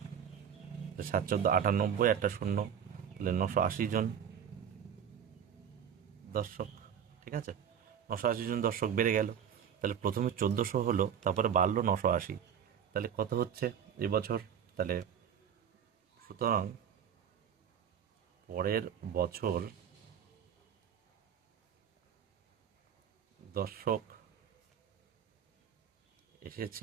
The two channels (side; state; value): left; quieter; 8.4 dB